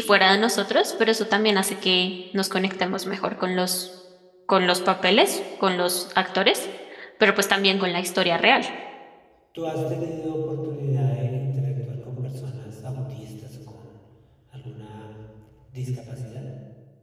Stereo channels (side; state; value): both; identical; correlation 1.00